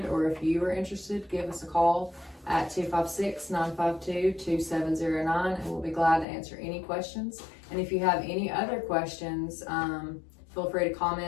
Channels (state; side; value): drops out; right; at 6.2 s